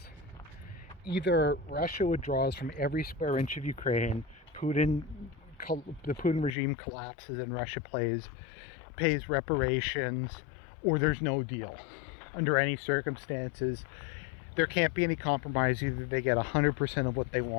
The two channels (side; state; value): right; drops out; at 6.6 s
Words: Either Russia withdraws from every square inch of Ukraine, the Putin regime collapses and Russia pays reparations, or there's no deal. Under any circumstances, there can't be any compromise. Either they get 100% of what they